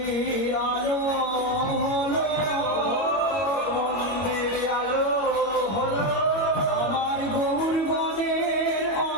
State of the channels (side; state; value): right; late; 22 ms